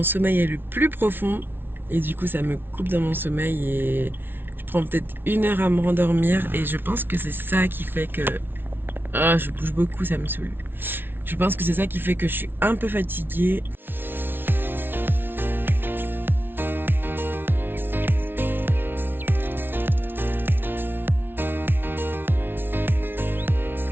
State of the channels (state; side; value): late; left; 0.10 ms